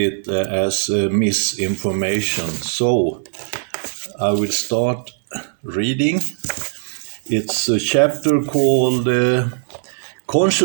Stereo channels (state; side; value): silent; left; digital silence